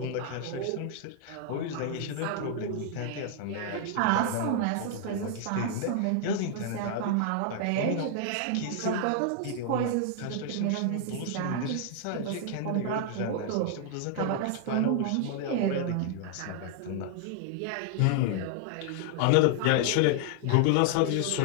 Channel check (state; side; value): different; both; correlation 0.00